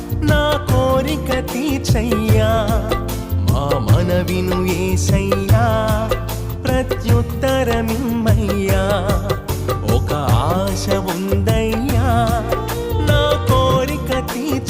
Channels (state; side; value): identical; both; correlation 1.00